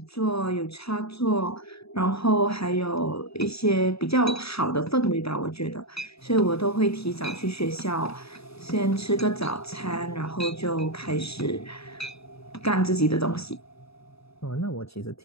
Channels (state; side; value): late; right; 0.77 ms